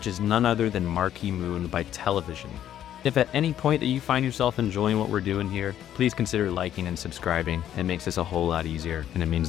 is none other than Marquee Moon by Television. If at any point that you find yourself enjoying what we're doing here, please consider liking and subscribing. It makes this a whole lot easier, and it means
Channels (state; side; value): quieter; right; 10.9 dB